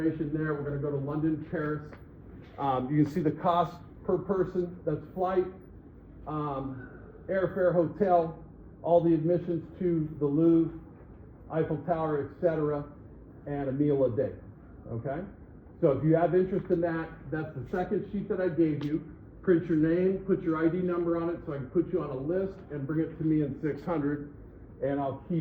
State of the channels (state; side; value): identical; both; correlation 1.00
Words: there. We're gonna go to London, Paris. You can see the cost per person. That's flight, airfare, hotel, all the admissions to the Louvre, Eiffel Tower, etc., and a meal a day, okay? So if you have interest in that, that's the second sheet that I gave you. Print your name, put your ID number on it so I can put you on a list and bring it to me in 600, and I'll